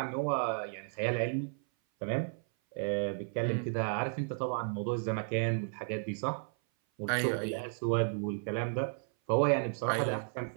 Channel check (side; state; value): left; silent; 55 dB below the other